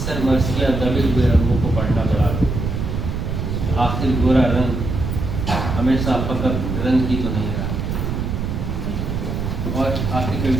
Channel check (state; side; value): noise; right; rumble, 2 dB below the sound